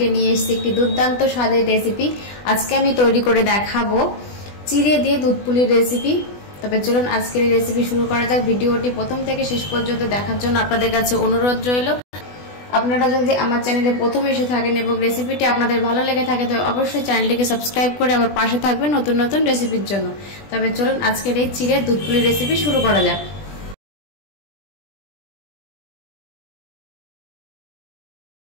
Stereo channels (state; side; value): late; right; 20 ms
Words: নিয়ে এসেছি একটি দুর্দান্ত স্বাদের রেসিপি। আজকে আমি তৈরি করে দেখাবো চিড়ে দিয়ে দুধ পুলির রেসিপি। তবে চলুন আজকের এই রেসিপি শুরু করা যাক। ভিডিওটি প্রথম থেকে শেষ পর্যন্ত দেখার জন্য আপনাদের কাছে অনুরোধ রইল। আপনারা যদি আমার চ্যানেলে প্রথম এসে থাকেন এবং রেসিপিটি আপনাদের ভালো লেগে থাকে তো অবশ্যই চ্যানেলটিকে সাবস্ক্রাইব করে আমার পাশে থাকবেন নতুন নতুন রেসিপির জন্য। তবে চলুন আজকের এই চিড়ে দুধ পুলির রেসিপি শুরু করা যাক।